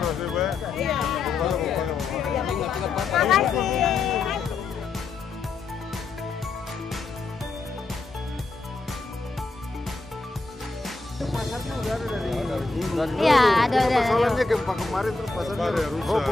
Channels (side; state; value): right; quieter; 3.8 dB